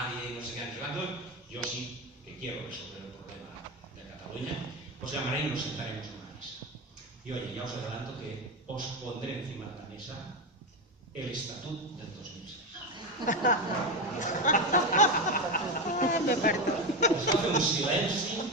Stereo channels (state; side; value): normal; both; correlation 0.15